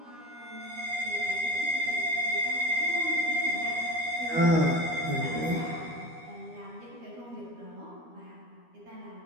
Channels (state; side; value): late; left; 12 ms